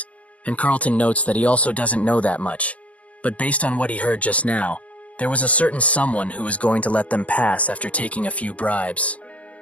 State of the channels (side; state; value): right; late; 0.070 ms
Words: and Carlton notes that he also doesn't know that much. But based on what he heard just now, there was a certain someone who was going to let them pass after taking a few bribes.